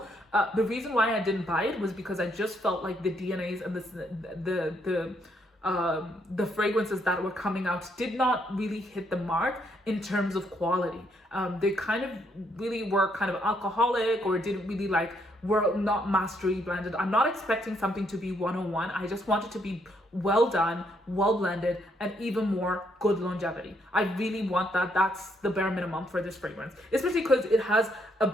The reason why I didn't buy it was because I just felt like the DNAs and the fragrances that were coming out did not really hit the mark in terms of quality. They kind of really were kind of alcoholic, or didn't really were not mastery blended. I'm not expecting something to be 101. I just want it to be well done, well blended, and even more good longevity. I really want that. That's the bare minimum for this fragrance, especially because it has a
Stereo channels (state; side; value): normal; both; correlation 0.73